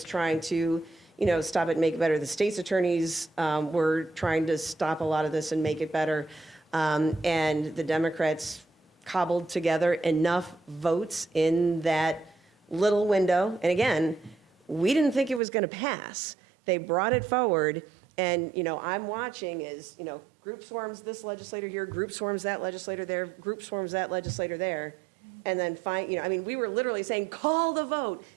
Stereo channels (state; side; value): drops out; left; at 15.4 s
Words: trying to, stop it and make it better. The state's attorneys were trying to stop a lot of this and make it better. And the Democrats cobbled together enough votes in that little window. And again, we didn't think it was going to pass. They brought it forward. And, I'm watching as, group swarms this legislator here, group swarms that legislator there, group swarms that legislator there. And then we were literally saying, call the vote.